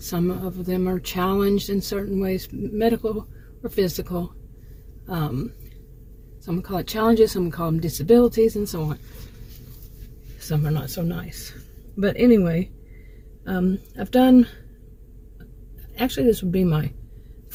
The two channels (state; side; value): identical; both; correlation 1.00